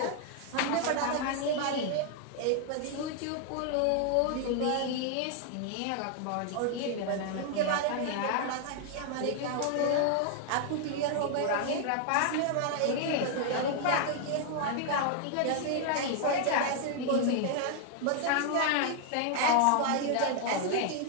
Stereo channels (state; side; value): different; both; correlation 0.00